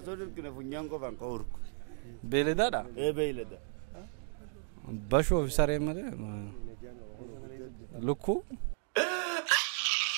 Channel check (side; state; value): left; silent; digital silence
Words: سودر كنا فنيان كفان كورك beeladaadha beeylada bashoo fi saree malee lukkuu